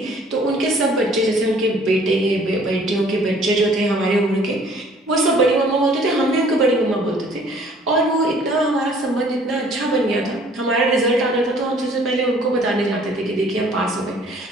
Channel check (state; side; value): normal; both; correlation 0.56